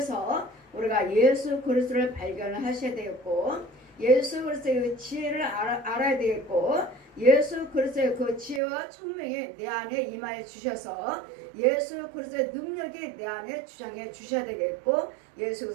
우리가 예수 그리스도를 발견을 하셔야 되겠고 예수 그리스도의 그 지혜를 알아야 되겠고 예수 그리스도의 그 지혜와 총명이 내 안에 임하여 주셔서 예수 그리스도의 능력이 내 안에 주장해 주셔야 되겠고 예수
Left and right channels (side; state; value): left; drops out; at 8.6 s